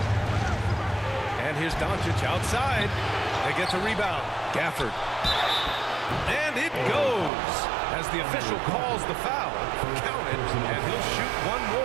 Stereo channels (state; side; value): drops out; left; at 7.3 s